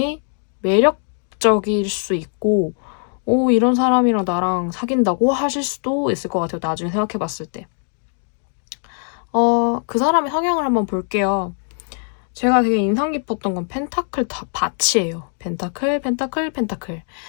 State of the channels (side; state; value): right; silent; 55 dB below the other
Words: 매력적일 수 있고 이런 사람이랑 나랑 사귄다고 하실 수도 있을 것 같아요. 나중에 생각해봤을 때. 그 사람의 성향을 한번 볼게요. 제가 되게 인상 깊었던 건 펜타클 밭이에요. 펜타클, 펜타클, 펜타클.